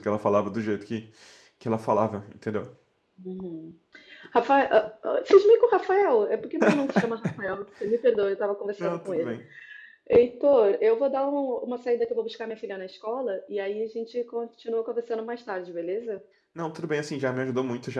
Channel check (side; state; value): both; identical; correlation 1.00